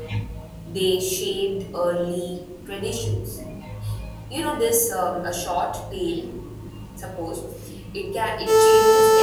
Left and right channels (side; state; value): both; identical; correlation 1.00